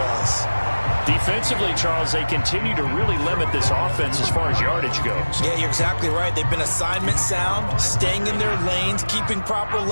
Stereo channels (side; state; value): both; inverted; correlation -1.00